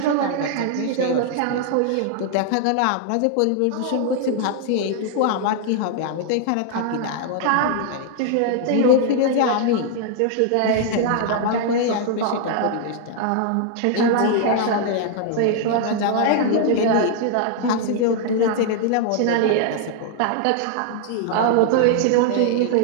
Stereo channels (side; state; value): both; different; correlation -0.01